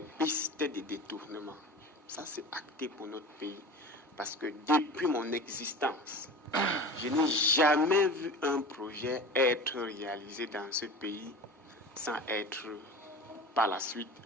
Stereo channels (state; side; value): normal; both; correlation 0.35